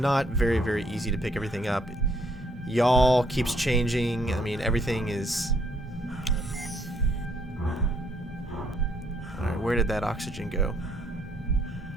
very, very easy to pick everything up. Y'all keeps changing. I mean, everything is... Alright, where did that oxygen go?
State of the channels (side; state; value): both; normal; correlation 0.68